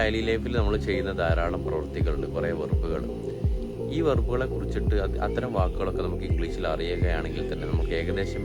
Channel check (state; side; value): identical; both; correlation 1.00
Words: ലൈഫിൽ നമ്മൾ ചെയ്യുന്ന ധാരാളം പ്രവൃത്തികളുണ്ട്, കുറേ വെർബുകൾ. ഈ വെർബുകളെ കുറിച്ചിട്ട് അത്തരം വാക്കുകളൊക്കെ നമുക്ക് ഇംഗ്ലീഷിൽ അറിയുകയാണെങ്കിൽ തന്നെ നമുക്ക് ഏകദേശം